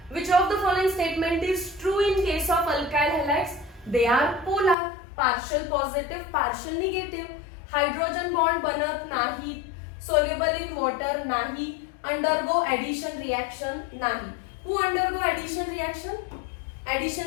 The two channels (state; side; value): drops out; right; at 4.8 s